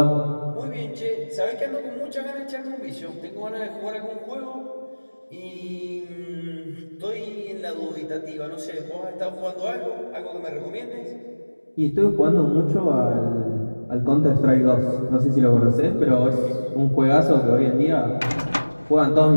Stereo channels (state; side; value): inverted; both; correlation -1.00